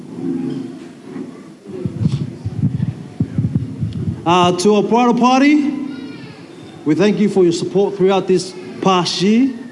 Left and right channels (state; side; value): identical; both; correlation 1.00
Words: To our bridal party, we thank you for your support throughout this past year.